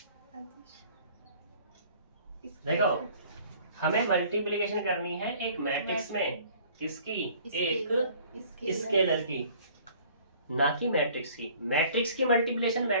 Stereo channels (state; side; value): inverted; both; correlation -0.53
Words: देखो, हमें मल्टीप्लिकेशन करनी है एक मैट्रिक्स में, किसकी? एक स्केलर की, ना कि मैट्रिक्स की। मैट्रिक्स की मल्टीप्लिकेशन